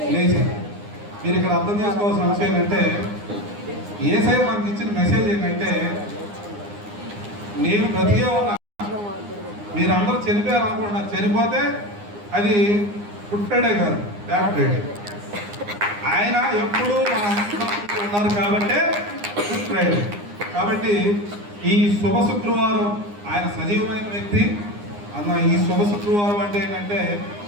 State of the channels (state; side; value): late; left; 9.8 ms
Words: లేచారు. మీరు ఇక్కడ అర్థం చేసుకోవాల్సిన అంశం ఏంటంటే, యేసయ్య మనకి ఇచ్చిన మెసేజ్ ఏంటంటే, నేను బ్రతికే ఉన్నా, మీరందరూ చనిపోయారు అనుకుంటున్నారు. చనిపోతే అది గుడ్ ఫ్రైడే కాదు, బ్లాక్ ఫ్రైడే. ఆయన ఎప్పుడు ఉన్నారు కాబట్టి గుడ్ ఫ్రైడే. కాబట్టి ఈ శుభ శుక్రవారం ఆయన సజీవమైన వ్యక్తి అన్న. ఈ శుభ శుక్రవారం అంటే ఏంటంటే,